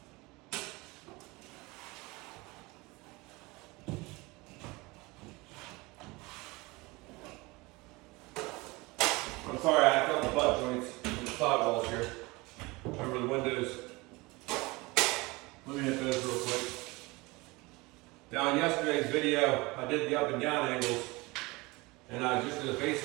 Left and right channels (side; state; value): left; quieter; 23.6 dB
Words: I'm sorry, I got the butt joints and the sidewalls here over the windows. Let me hit those real quick. Now in yesterday's video, I did the up and down angles, and I just did a